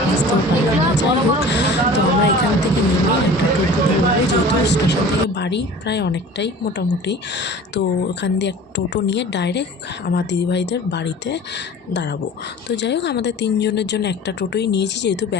বুঝতেও পারলাম না। যাই হোক, তো আমরা এখান থেকে নেমে একটা টোটো ধরবো, যেহেতু স্টেশন থেকে বাড়ি প্রায় অনেকটাই মোটামুটি। তো ওখান দিয়ে এক টোটো নিয়ে ডাইরেক্ট আমার দিদিভাইদের বাড়িতে দাঁড়াবো। তো যাই হোক, আমাদের 3 জনের জন্য একটা টোটোই নিয়েছি, যেহেতু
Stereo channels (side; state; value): both; normal; correlation 0.42